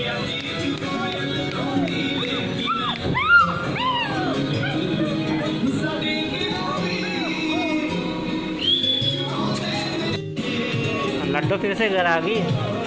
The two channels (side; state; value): both; identical; correlation 1.00